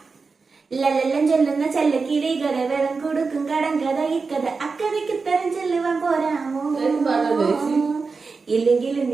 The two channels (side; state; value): left; quieter; 4.5 dB